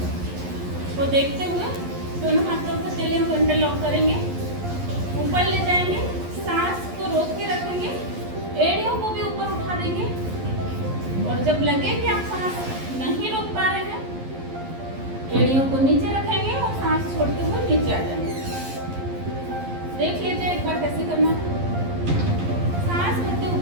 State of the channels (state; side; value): late; left; 11 ms